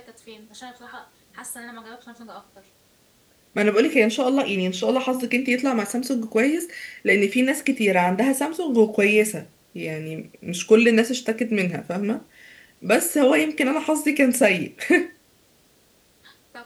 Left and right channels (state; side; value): identical; both; correlation 1.00